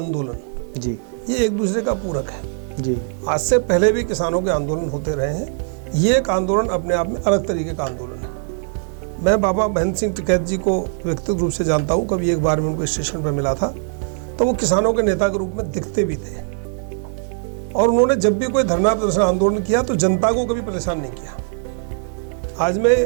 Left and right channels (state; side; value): silent; left; digital silence